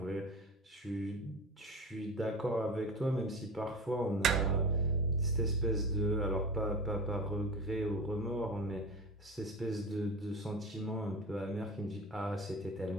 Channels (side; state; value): both; normal; correlation 0.32